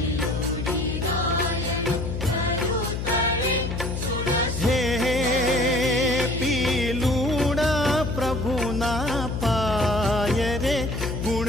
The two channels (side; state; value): left; noise; hum, 4 dB below the sound